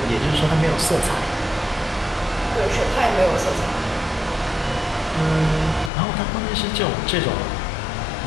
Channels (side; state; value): right; drops out; at 5.9 s